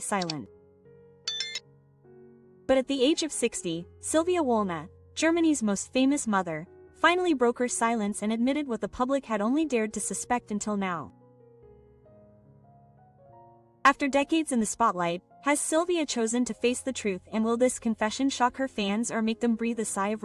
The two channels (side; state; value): both; identical; correlation 1.00